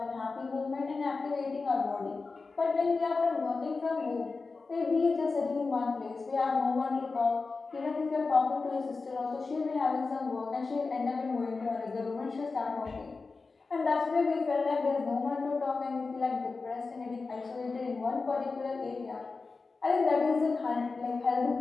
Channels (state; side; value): quieter; right; 4.1 dB